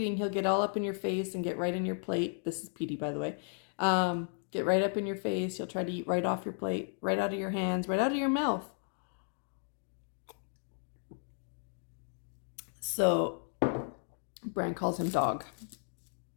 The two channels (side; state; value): right; silent; 55 dB below the other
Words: he'll get all up in your face and get right in your plate. This is Petey, by the way. Get right up in your face. He'll try to eat right off your plate, right out of your hands, right out of your mouth. So Brand calls him Dog.